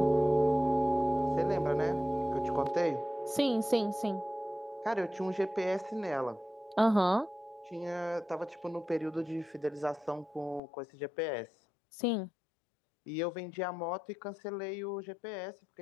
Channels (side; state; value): right; drops out; at 10.6 s